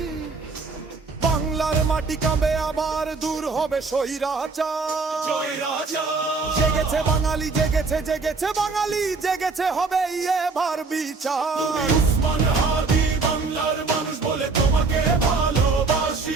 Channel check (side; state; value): left; quieter; 4.1 dB